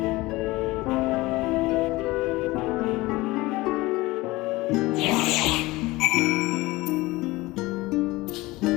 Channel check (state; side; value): quieter; right; 20.5 dB